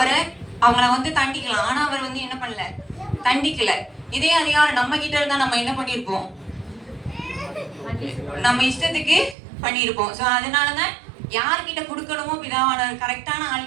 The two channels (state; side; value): drops out; left; at 9.3 s